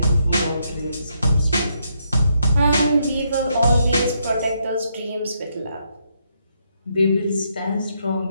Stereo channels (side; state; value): both; inverted; correlation -0.76